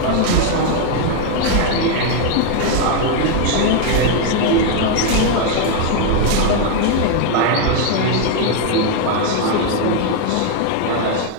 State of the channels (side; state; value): both; different; correlation 0.01